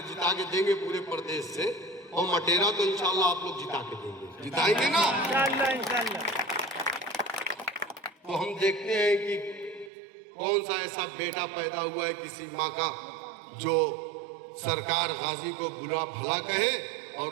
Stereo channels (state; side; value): drops out; left; at 9.9 s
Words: जिता के देंगे पूरे प्रदेश से, और मटेरा तो इंशाल्लाह आप लोग जिता के देंगे, जिताएंगे ना? इंशाल्लाह। तो हम देखते हैं कि कौन सा ऐसा बेटा पैदा हुआ है किसी माँ का जो सरकार गाजी को बुरा भला कहे और